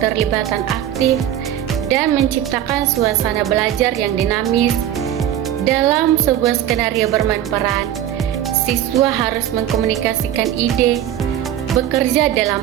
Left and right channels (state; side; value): quieter; left; 11.3 dB